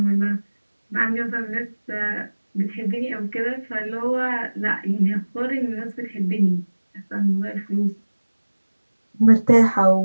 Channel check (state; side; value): inverted; both; correlation -1.00